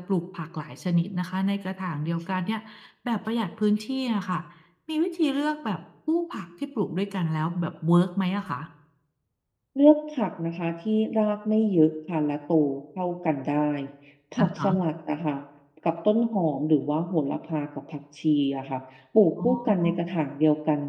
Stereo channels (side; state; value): both; identical; correlation 1.00